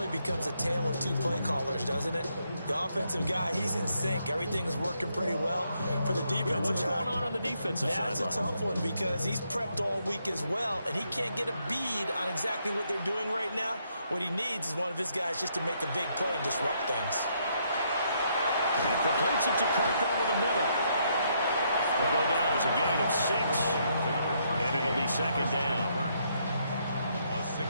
becomes a tale of 2 play callers, doesn't it? The offensive guy, he's in sync. Everything's working pretty well. For the defensive guy, what's going on the defensive side? That's a tough one because he's prepped all week as well, and he can't get a bead on exactly what they're doing right now. What he needs is one of his guys just to make a big play and disrupt things. And completes it to Kirk over the middle. Will go down as a gain of 6. And it'll be 2nd down. A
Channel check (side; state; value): both; inverted; correlation -0.74